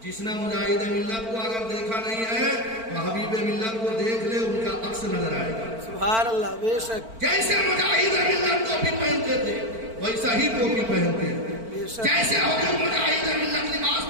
جس نے مجاہد ملت کو اگر دیکھا نہیں ہے تو حبیب ملت کو دیکھ لے ان کا عکس نظر آئے گا. سبحان اللہ بے شک جیسے مجاہد ملت ٹوپی پہنتے تھے ویسا ہی ٹوپی پہنتے ہیں. بے شک جیسے حضور مجاہد ملت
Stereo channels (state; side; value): late; left; 4.5 ms